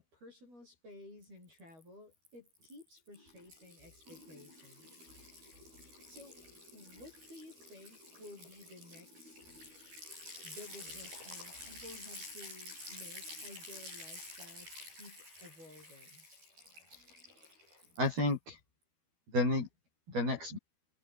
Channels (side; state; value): left; late; 12 ms